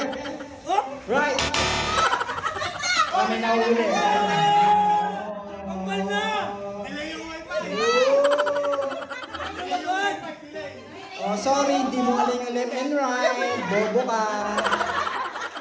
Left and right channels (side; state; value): both; identical; correlation 1.00